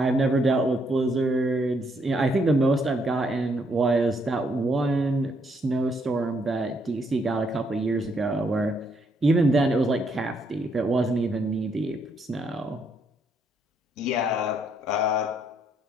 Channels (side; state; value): both; normal; correlation 0.73